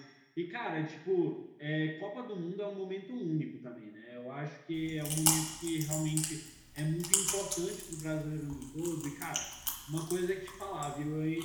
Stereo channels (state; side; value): identical; both; correlation 1.00